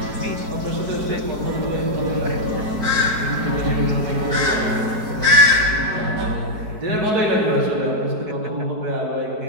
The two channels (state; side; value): late; left; 4.6 ms